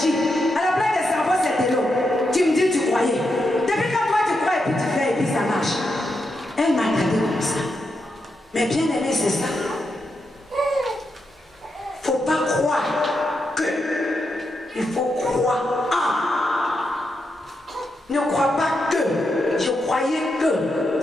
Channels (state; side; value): normal; both; correlation 0.84